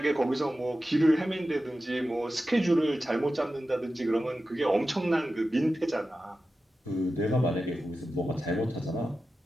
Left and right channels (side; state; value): both; normal; correlation 0.93